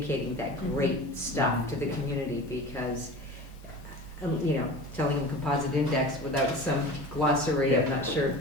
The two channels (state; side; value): normal; both; correlation 0.35